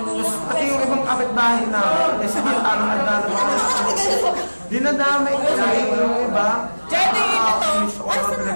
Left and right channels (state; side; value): inverted; both; correlation -1.00